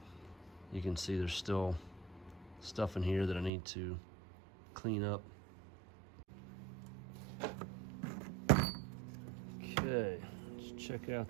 You can see there's still stuff in here that I need to clean up. Okay, let's check out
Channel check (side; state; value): left; drops out; at 3.5 s